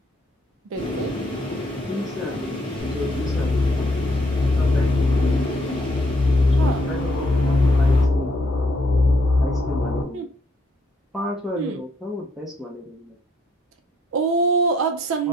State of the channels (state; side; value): normal; both; correlation 0.71